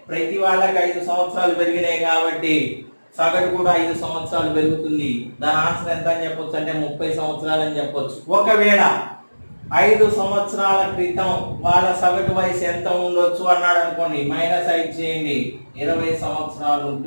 ప్రతి వాళ్ళకి 5 సంవత్సరాలు పెరిగినాయి కాబట్టి సగటు కూడా 5 సంవత్సరాలు పెరుగుతుంది. దాని ఆన్సర్ ఎంత అని చెప్పొచ్చు అంటే 30 సంవత్సరాలు అని చెప్పొచ్చు. ఒకవేళ 5 సంవత్సరాల క్రితం వాళ్ళ సగటు వయసు ఎంత ఉండొచ్చు అన్నాడు అనుకోండి. -5 చేయండి, 20 సంవత్సరాలు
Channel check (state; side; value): inverted; both; correlation -1.00